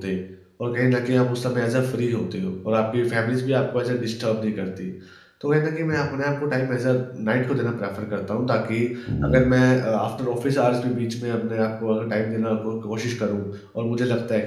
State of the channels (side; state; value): both; identical; correlation 1.00